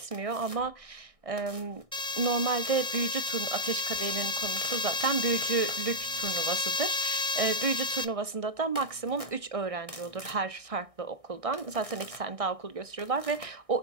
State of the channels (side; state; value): left; late; 1.6 ms